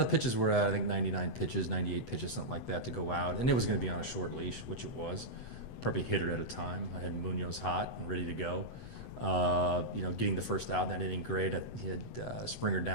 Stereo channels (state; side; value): late; right; 8.0 ms